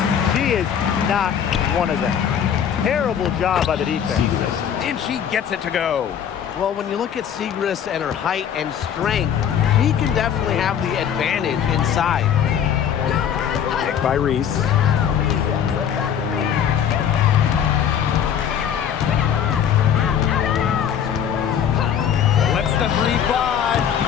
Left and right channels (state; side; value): quieter; right; 8.7 dB